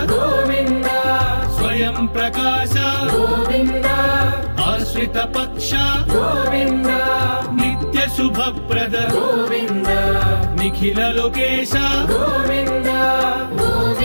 గోవింద స్వయం ప్రకాశ గోవింద ఆశ్రిత పక్ష గోవింద నిత్య శుభప్రద గోవింద నిఖిల లోకేశ గోవింద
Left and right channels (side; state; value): both; inverted; correlation -1.00